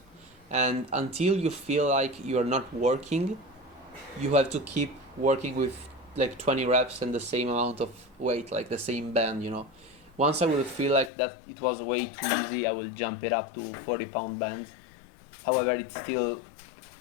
and until you feel like you are not working, you have to keep working with like 20 reps and the same amount of weight, like the same band, you know. Once I will feel like that it was way too easy, I will jump it up to 40-pound bands. However, it's still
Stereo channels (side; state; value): right; drops out; at 11.1 s